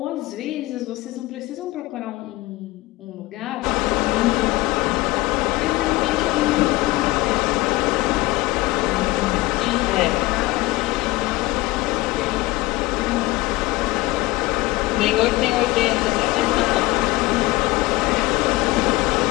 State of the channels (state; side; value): quieter; right; 20.0 dB